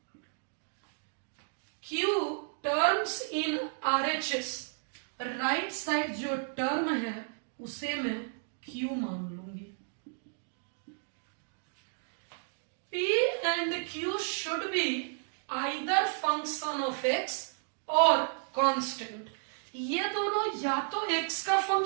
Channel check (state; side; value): silent; left; 56 dB below the other